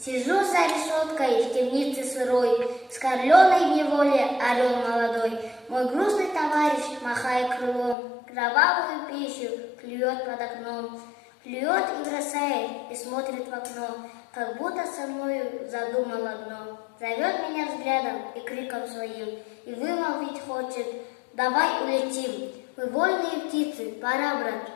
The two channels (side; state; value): right; drops out; at 8.0 s